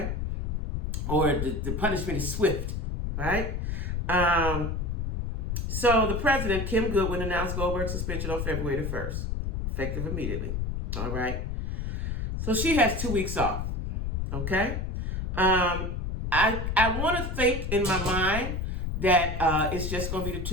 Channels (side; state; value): left; noise; rumble, 2 dB below the sound